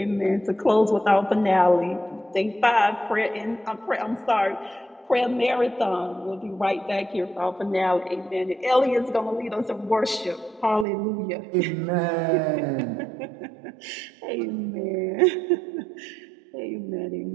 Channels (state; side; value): drops out; left; at 10.9 s